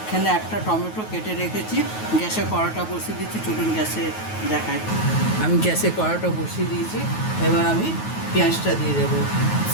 একটা টমেটো কেটে রেখেছি। গ্যাসে কড়াটা বসিয়ে দিচ্ছি, চলুন গ্যাসে দেখাই। আমি গ্যাসে কড়াটা বসিয়ে দিয়েছি। এবার আমি পেঁয়াজটা দিয়ে দেবো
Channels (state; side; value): late; right; 9.3 ms